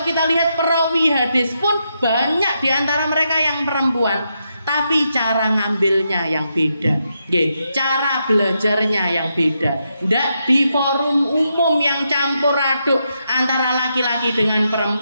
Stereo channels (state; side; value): inverted; both; correlation -0.82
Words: kita lihat perawi hadis pun banyak di antara mereka yang perempuan, tapi cara ngambilnya yang beda, cara belajarnya yang beda. Nggak di forum umum yang campur aduk antara laki-laki dengan